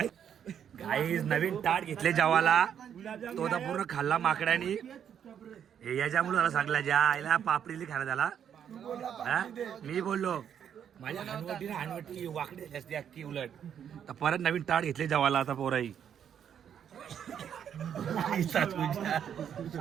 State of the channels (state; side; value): quieter; left; 8.7 dB